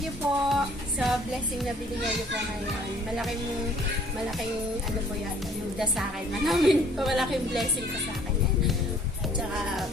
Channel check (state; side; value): normal; both; correlation 0.57